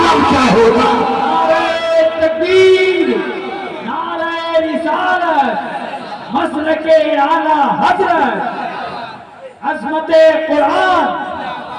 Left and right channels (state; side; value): identical; both; correlation 1.00